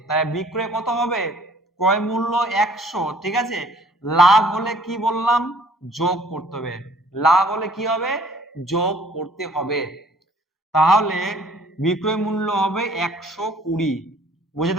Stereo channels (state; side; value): normal; both; correlation 0.56